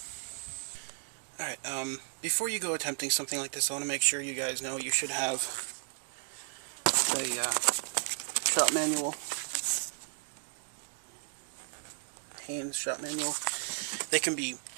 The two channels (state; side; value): silent; left; 55 dB below the other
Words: Alright, before you go attempting something like this, I want to make sure you guys know you should have the shop manual. Haynes shop manual. They can be